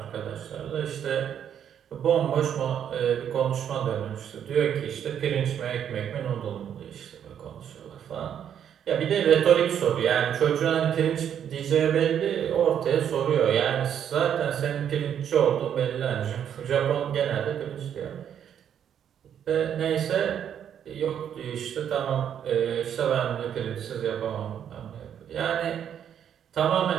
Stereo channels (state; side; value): quieter; left; 9.1 dB